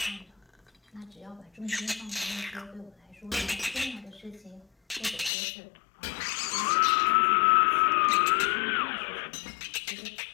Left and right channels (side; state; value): right; drops out; at 5.3 s